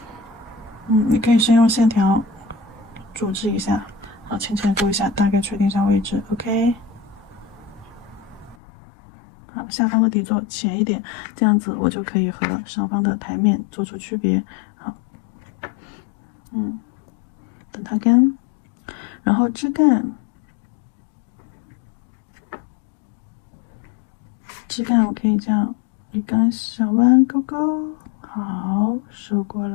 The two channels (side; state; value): right; drops out; at 8.6 s